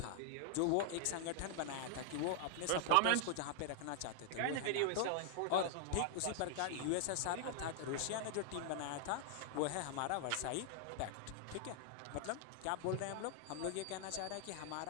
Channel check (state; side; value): different; both; correlation 0.00